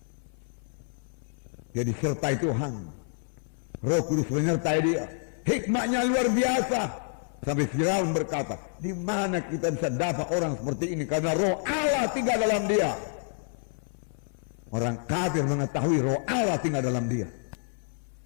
Dia disertai Tuhan, Roh Kudus menyertai dia, hikmatnya luar biasa. Sampai Firaun berkata, di mana kita bisa dapat orang seperti ini? Karena Roh Allah tinggal dalam dia. Orang kafir mengetahui Roh Allah tinggal dalam dia,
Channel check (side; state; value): right; silent; 58 dB below the other